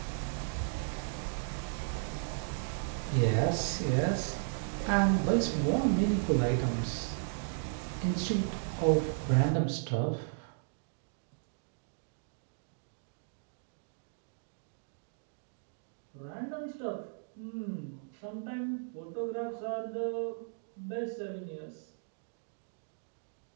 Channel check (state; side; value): silent; left; digital silence